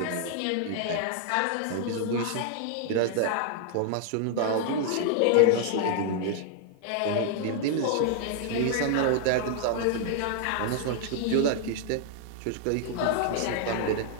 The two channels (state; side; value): different; both; correlation 0.00